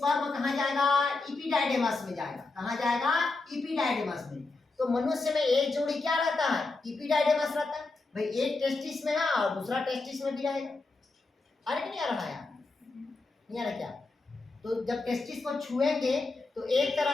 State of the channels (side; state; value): right; quieter; 3.5 dB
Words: कहाँ जाएगा, इपिडाइडेमस में जाएगा। कहाँ जाएगा, इपिडाइडेमस में। तो मनुष्य में एक जोड़ी क्या रहता है, इपिडाइडेमस रहता है। भाई एक टेस्टिस में है और दूसरा टेस्टिस में भी रहेगा। अरे नहीं आ रहा है, नहीं आ रहा क्या? तो जब टेस्टिस को छुएंगे तो एक